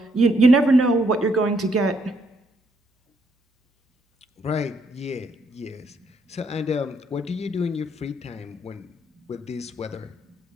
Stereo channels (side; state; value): both; normal; correlation 0.73